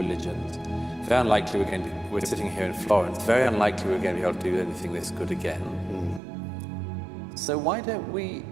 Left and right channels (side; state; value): left; drops out; at 6.2 s